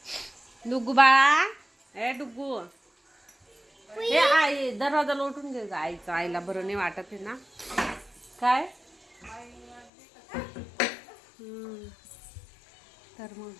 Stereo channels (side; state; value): right; drops out; at 9.9 s